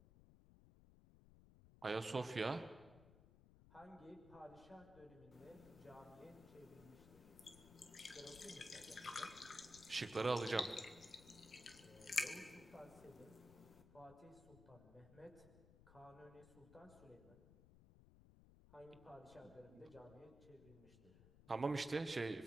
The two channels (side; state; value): left; noise; rumble, 19 dB below the sound